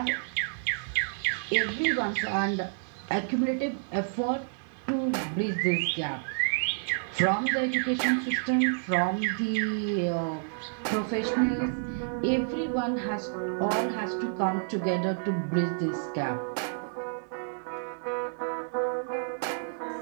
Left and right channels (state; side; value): silent; left; digital silence